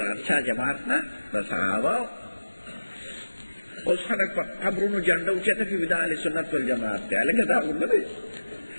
ارشا جماعت نه د صحابو اوس خلک په قبرونو جنډه اوچته کوي د اهل سنت والجماعت دی هلکه دا خو نه دی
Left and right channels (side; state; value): both; inverted; correlation -1.00